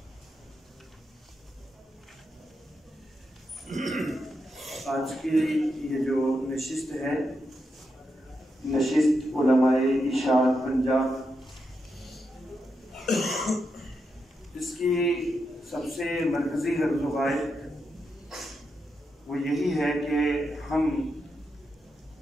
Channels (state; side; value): normal; both; correlation 0.85